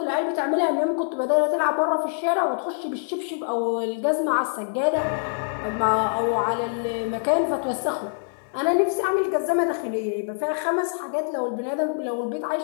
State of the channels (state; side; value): silent; right; 58 dB below the other